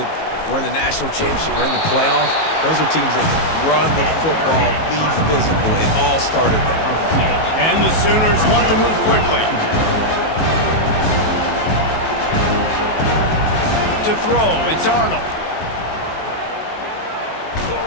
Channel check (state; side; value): late; right; 19 ms